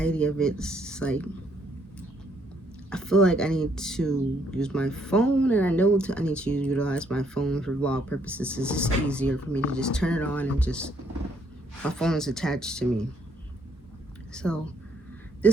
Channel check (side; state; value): both; normal; correlation 0.69